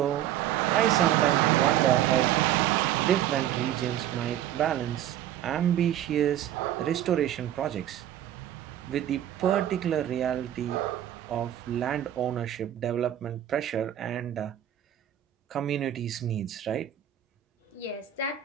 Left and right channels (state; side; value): quieter; left; 11.5 dB